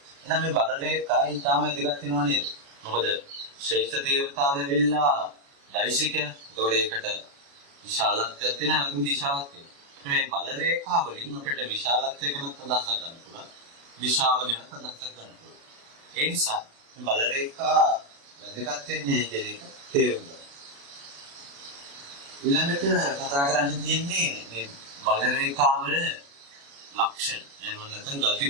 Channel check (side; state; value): left; late; 36 ms